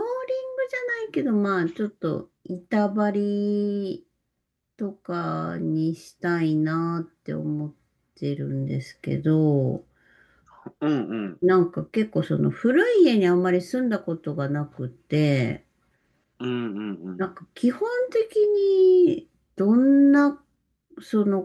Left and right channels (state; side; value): identical; both; correlation 1.00